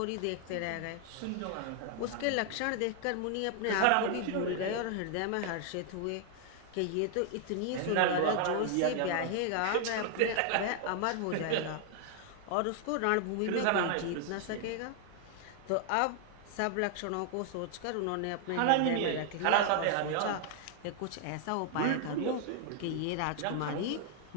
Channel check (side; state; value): both; different; correlation 0.00